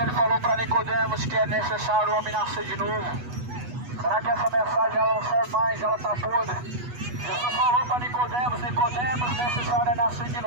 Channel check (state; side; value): late; left; 8.2 ms